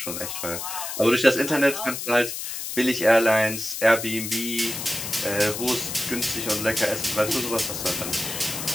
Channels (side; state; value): left; noise; hiss, 6 dB below the sound